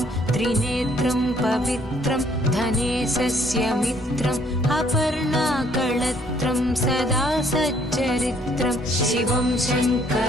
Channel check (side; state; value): both; normal; correlation 0.64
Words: त्रिनेत्रं पवित्रं धनेशस्य मित्रम् अपर्णाकळत्रं सदा सच्चरित्रं शिवं